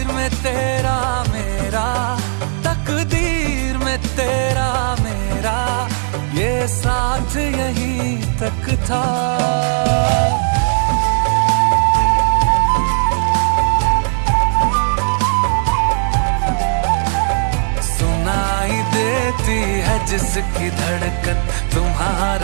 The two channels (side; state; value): left; silent; 60 dB below the other